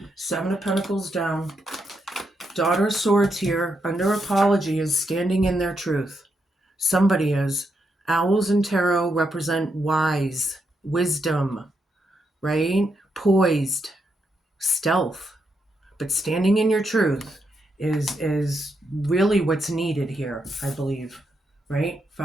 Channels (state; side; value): normal; both; correlation 0.81